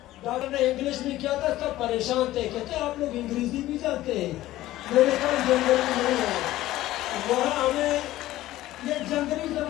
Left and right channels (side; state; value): right; quieter; 15.5 dB